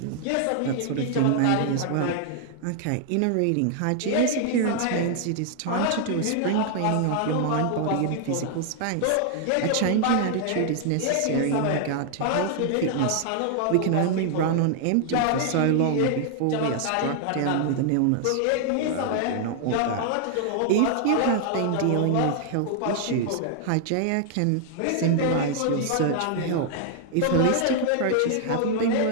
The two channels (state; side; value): different; both; correlation 0.00